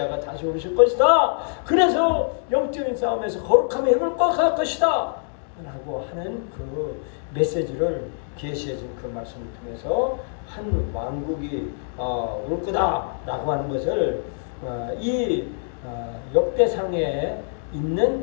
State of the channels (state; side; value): silent; right; digital silence